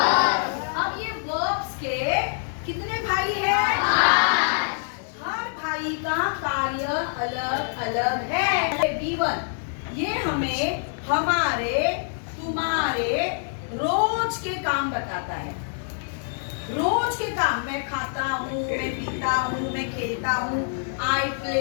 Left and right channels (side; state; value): right; silent; digital silence